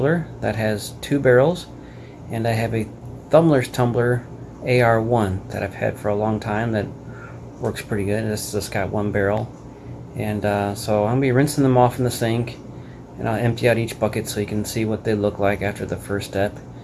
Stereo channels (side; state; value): both; identical; correlation 1.00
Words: that has 2 barrels, and I have a Thumler's tumbler AR1 that I've had for a long time that works pretty good. This just got 1 barrel, and so I'm gonna be rinsing them off in the sink, and I'll empty out each bucket so you can see what they look like after the first step,